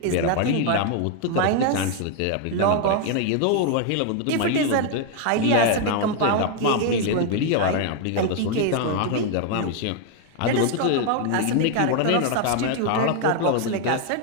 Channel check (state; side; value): different; both; correlation 0.01